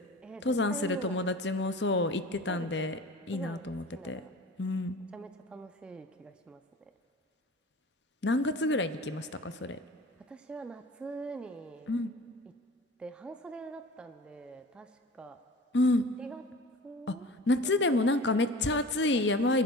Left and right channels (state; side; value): normal; both; correlation 0.39